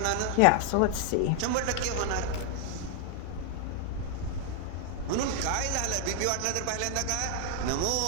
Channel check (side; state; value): both; different; correlation 0.00